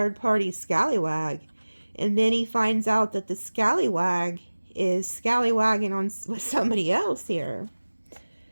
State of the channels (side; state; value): both; inverted; correlation -1.00